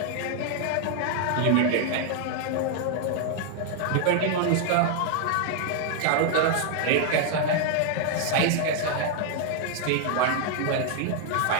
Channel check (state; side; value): different; both; correlation 0.00